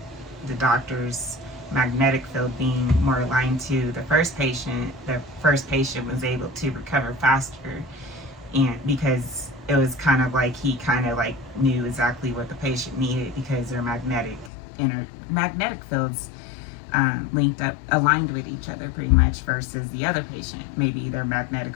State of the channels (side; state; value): right; drops out; at 14.5 s